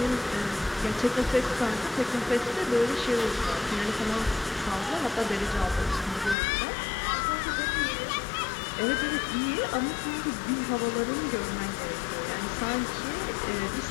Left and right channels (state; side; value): drops out; right; at 6.4 s